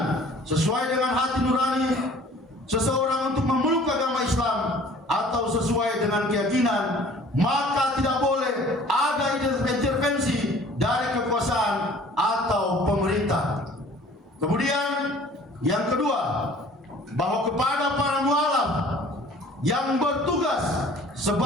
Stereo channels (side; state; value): both; normal; correlation 0.51